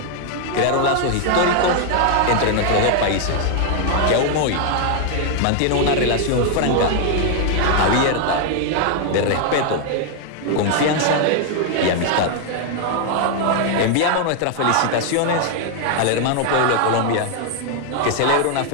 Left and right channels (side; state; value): both; different; correlation 0.00